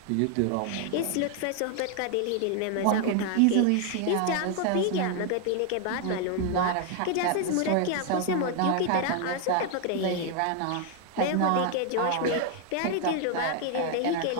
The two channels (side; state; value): both; different; correlation 0.00